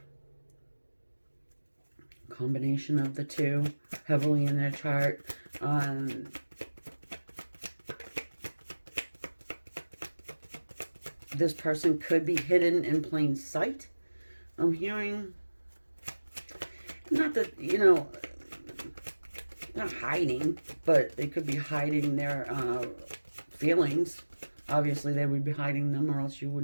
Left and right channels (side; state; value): both; inverted; correlation -1.00